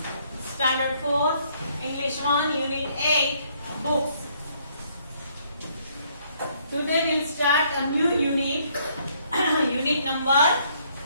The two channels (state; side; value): inverted; both; correlation -0.67